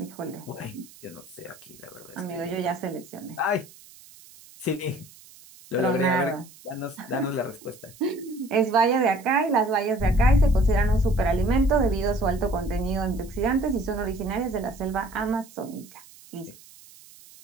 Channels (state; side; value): noise; right; hiss, 22 dB below the sound